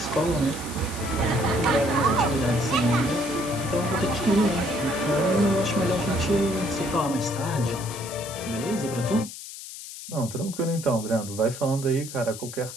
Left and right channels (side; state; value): left; noise; hiss, 12 dB below the sound